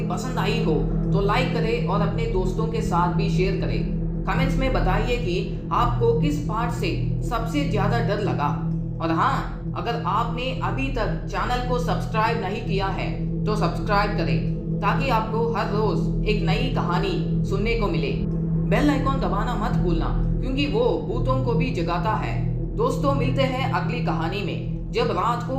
पसंद आई हो तो लाइक करें और अपने दोस्तों के साथ भी शेयर करें। कमेंट्स में बताइए कि आपको किस पार्ट से सबसे ज्यादा डर लगा। और हाँ, अगर आपने अभी तक चैनल को सब्सक्राइब नहीं किया है तो सब्सक्राइब करें, ताकि आपको हर रोज एक नई कहानी सुनने को मिले। बेल आइकॉन दबाना मत भूलना, क्योंकि वो भूतों को भी जगाता है। दोस्तों, मिलते हैं अगली कहानी में, जब रात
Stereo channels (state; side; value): identical; both; correlation 1.00